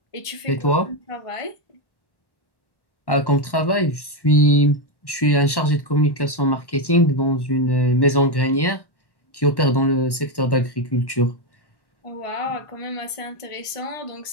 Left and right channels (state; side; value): late; right; 1.1 ms